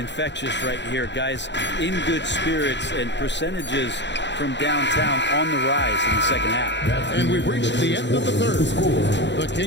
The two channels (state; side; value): late; right; 0.52 ms